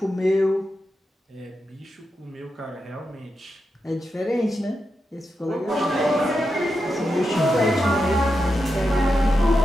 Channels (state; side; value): normal; both; correlation 0.88